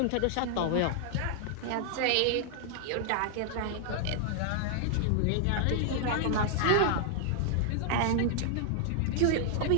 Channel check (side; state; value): both; different; correlation -0.01